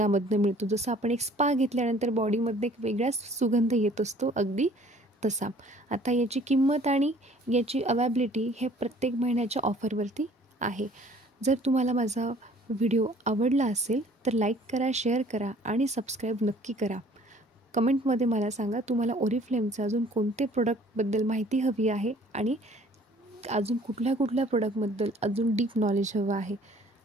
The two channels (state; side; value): normal; both; correlation 0.55